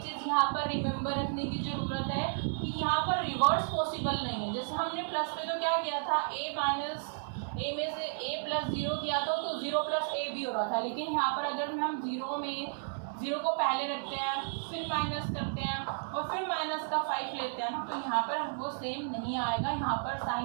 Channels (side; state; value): left; silent; 55 dB below the other